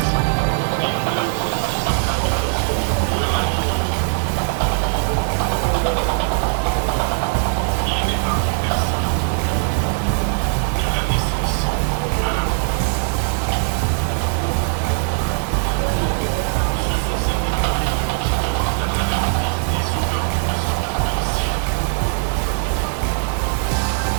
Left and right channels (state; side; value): silent; left; digital silence